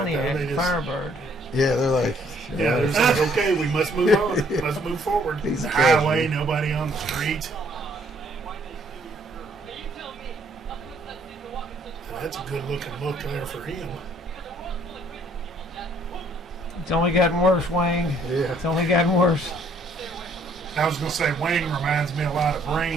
it. Though. Pontiac They just, Firebird. Yeah, they're like. yeah, they're just like, okay, we must move on. Let's move forward. He's The a highway, nobody on the streets. That's a good looking look there for him. It's only gotten worse, Wayne. Yeah. It's only gotten worse. I was going to say Wayne reminds me a lot of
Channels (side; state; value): both; normal; correlation 0.64